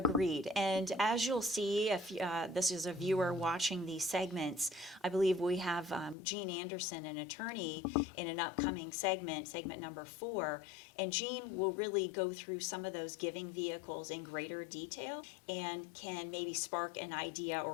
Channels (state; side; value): drops out; right; at 6.2 s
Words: And as you'll see, if this is a viewer watching these segments, I believe we have Jean Anderson, an attorney, in an upcoming segment number 4. And Jean will really go through some of those giving vehicles in greater detail and can maybe spark an idea